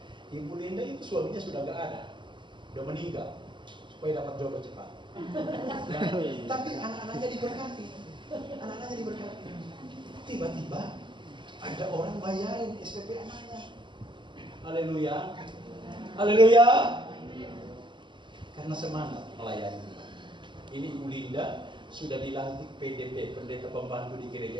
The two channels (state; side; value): late; left; 0.23 ms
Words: Ibu Linda itu suaminya sudah gak ada, sudah meninggal, supaya dapat jodoh cepat. Tapi anak-anaknya diberkati. Tiba-tiba ada orang bayarin SPP anaknya. Haleluya. Karena semangat melayani. Ini Ibu Linda sudah dilantik PDP, pendeta pembantu di gereja